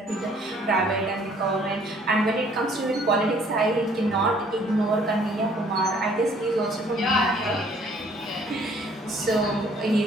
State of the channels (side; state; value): both; normal; correlation 0.59